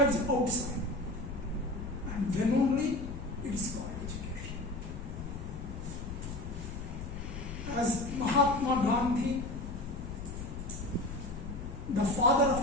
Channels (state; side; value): noise; left; rumble, 8 dB below the sound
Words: outside. And then only it is called education.